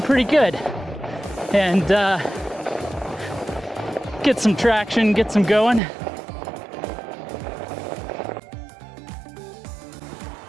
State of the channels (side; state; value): left; drops out; at 5.8 s